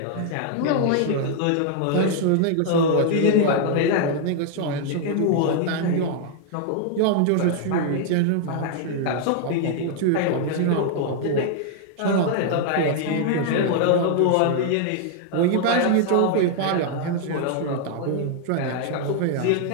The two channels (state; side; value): different; both; correlation 0.00